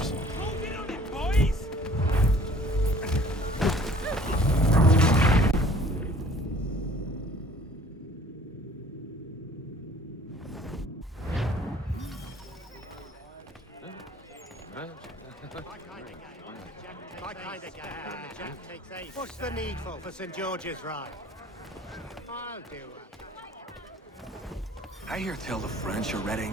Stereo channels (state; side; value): normal; both; correlation 0.52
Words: What's the needful for St. George's Ride? I'll do it. I hear tell the French are